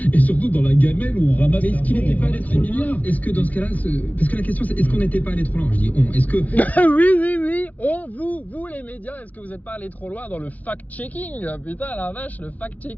et surtout dans la gamelle où on ramasse. Mais est-ce qu'il n'était pas allé trop loin? Est-ce que dans ce cas-là, parce que la question c'est, est-ce qu'on n'était pas allé trop loin? Je dis on, est-ce que... oui, vous les médias, est-ce que vous n'êtes pas allé trop loin dans le fact-checking? Putain la vache, le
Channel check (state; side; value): late; right; 0.072 ms